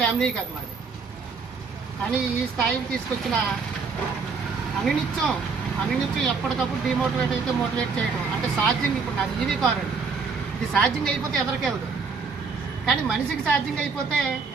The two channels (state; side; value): quieter; left; 5.0 dB